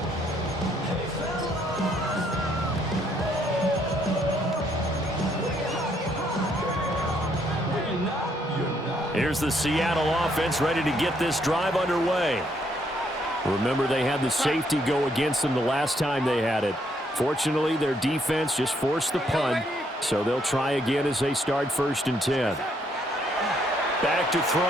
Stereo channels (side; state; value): both; normal; correlation 0.71